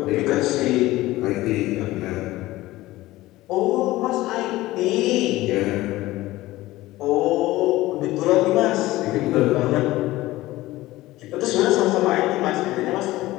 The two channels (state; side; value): quieter; right; 17.6 dB